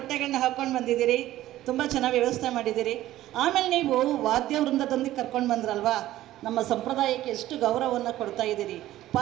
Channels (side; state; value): left; quieter; 14.6 dB